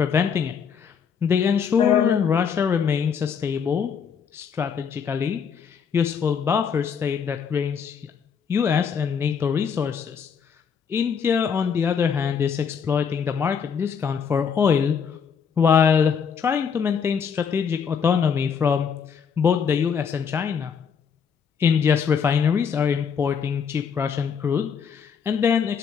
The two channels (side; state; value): right; quieter; 6.9 dB